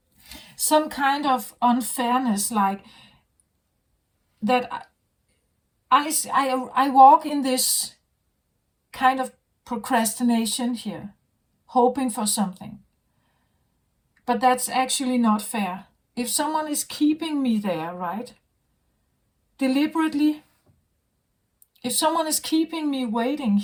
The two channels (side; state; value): both; identical; correlation 1.00